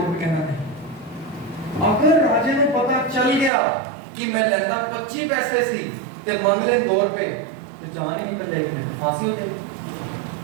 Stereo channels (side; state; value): left; drops out; at 3.5 s